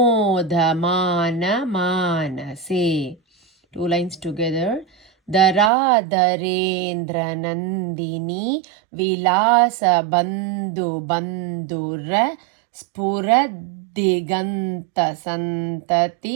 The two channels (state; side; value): drops out; left; at 5.7 s